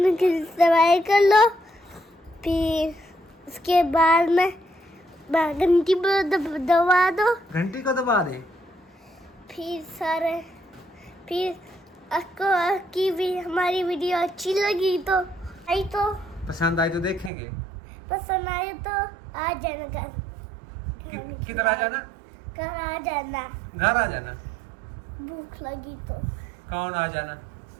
दवाई कर लो, फिर उसके बाद में घंटी पर दबा दो, घंटी को दबा दे। फिर आपको की भी हमारी वीडियो अच्छी लगी तो पसंद आई तो देखेंगे। पसंद आए तो आ जाना घर। किधर आ जाना? घर आ जाना। घर आ जाना। भूख लगी तो कौन आ जाना?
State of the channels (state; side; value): drops out; left; at 17.3 s